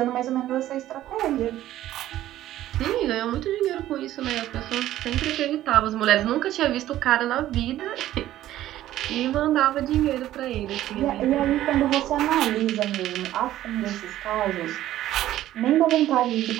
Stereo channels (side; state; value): left; quieter; 13.7 dB